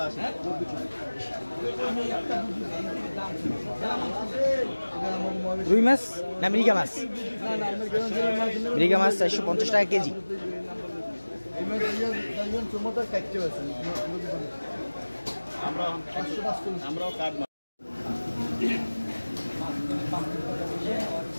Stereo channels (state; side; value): inverted; both; correlation -1.00